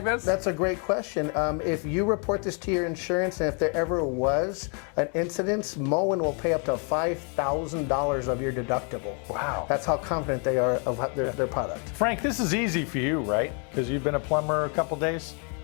this? That's a great question. If you report this to your insurance and if there ever was an incident, Moen will pay up to $5,000 of your deductible. Wow. That's how confident they are of their product. Frank, this is easy for you, right? Because you've been a plumber a couple days?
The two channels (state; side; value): quieter; right; 38.9 dB